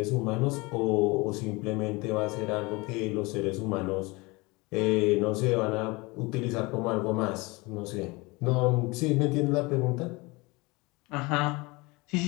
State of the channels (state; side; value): quieter; right; 24.7 dB